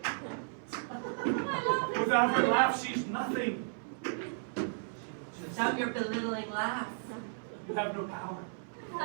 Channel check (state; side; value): silent; left; 55 dB below the other